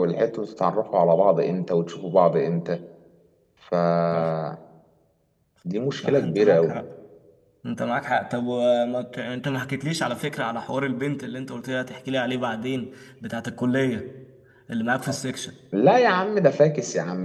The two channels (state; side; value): identical; both; correlation 1.00